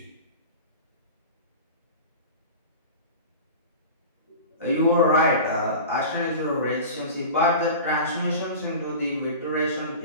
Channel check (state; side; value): inverted; both; correlation -0.33